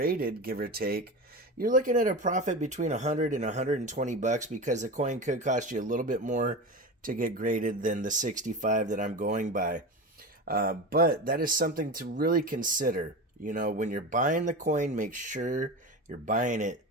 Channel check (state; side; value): normal; both; correlation 0.26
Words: give or take, you're looking at a profit between 100 and 120 bucks, because the coin could cost you a little bit more to get graded than the 65 that I'm going by. But that is something to really consider. When you're buying the coin, make sure you're buying it